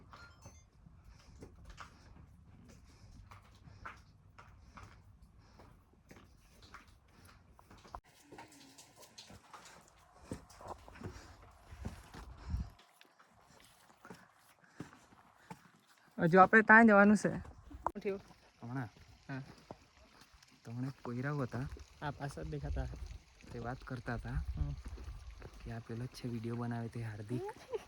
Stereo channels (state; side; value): identical; both; correlation 1.00